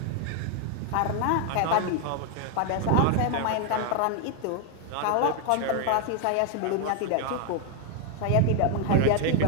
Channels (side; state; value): both; different; correlation 0.00